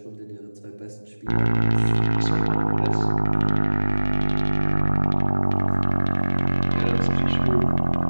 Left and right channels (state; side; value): inverted; both; correlation -1.00